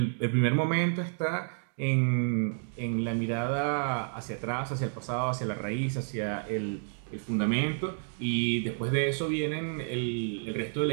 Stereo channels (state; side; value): silent; left; digital silence